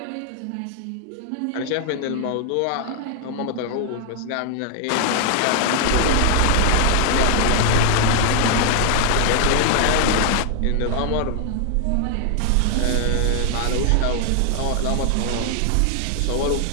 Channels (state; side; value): different; both; correlation 0.00